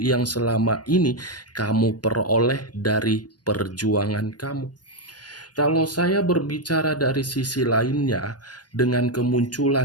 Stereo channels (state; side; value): late; right; 0.69 ms